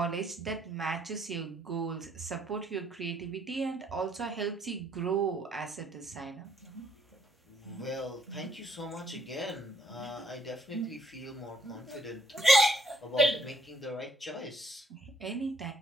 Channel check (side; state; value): both; normal; correlation 0.67